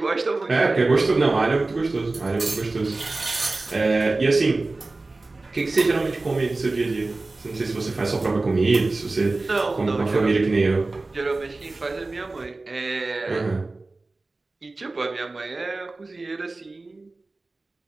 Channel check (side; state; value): left; quieter; 3.3 dB